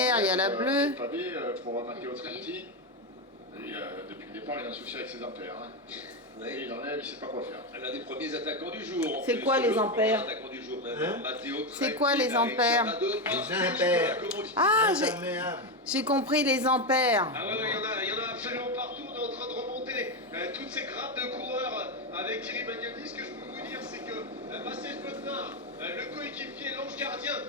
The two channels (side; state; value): both; normal; correlation 0.10